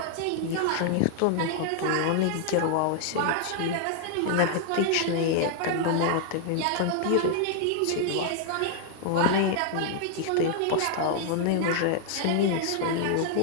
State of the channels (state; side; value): different; both; correlation 0.00